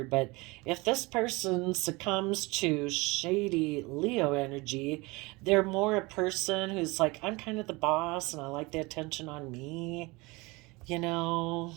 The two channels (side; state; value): left; quieter; 24.2 dB